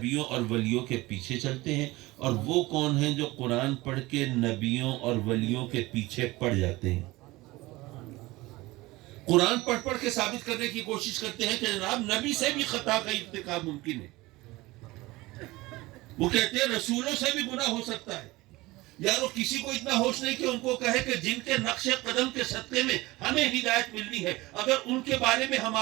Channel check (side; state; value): left; quieter; 20.4 dB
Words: اور ولیوں کے پیچھے چلتے ہیں، اور وہ کون ہیں جو قرآن پڑھ کے نبیوں اور ولیوں کے پیچھے پڑ جاتے ہیں. قرآن پڑھ کے ثابت کرنے کی کوشش کرتے ہیں کہ جناب نبی سے بھی خطا کا ارتکاب ممکن ہے. وہ کہتے ہیں رسولوں سے بھی گناہ ہو سکتا ہے. یار وہ کسی کو اتنا ہوش نہیں کہ ان کو کہے کہ جن کے نقش قدم کے صدقے میں ہمیں ہدایت ملنی ہے، اگر ان کے بارے میں